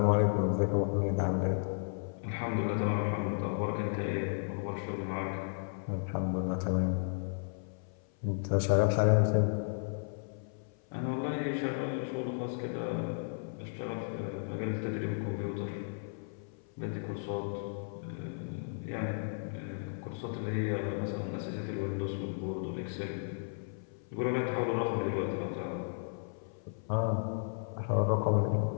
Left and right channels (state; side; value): silent; right; 55 dB below the other